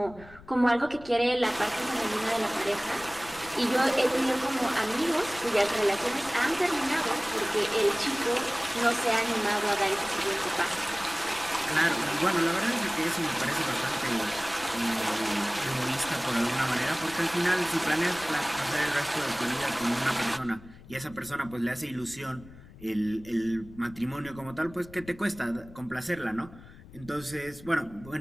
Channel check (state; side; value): noise; left; rumble, 20 dB below the sound